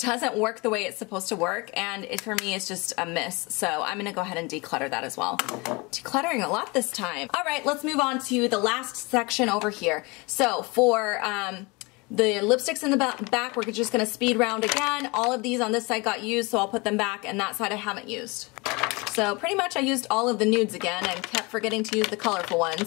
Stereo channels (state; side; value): quieter; right; 26.6 dB